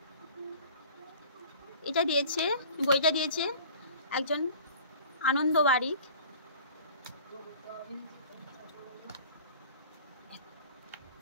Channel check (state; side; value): inverted; both; correlation -0.45